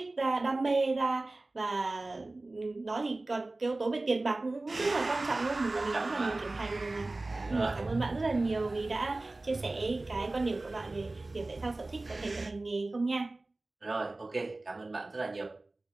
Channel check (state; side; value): quieter; left; 3.0 dB